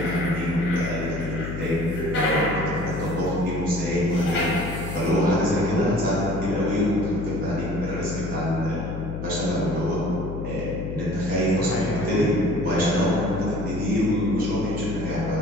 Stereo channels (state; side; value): noise; left; hum, 6 dB below the sound